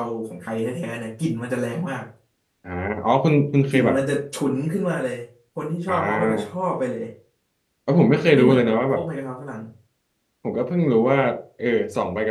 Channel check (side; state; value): both; identical; correlation 1.00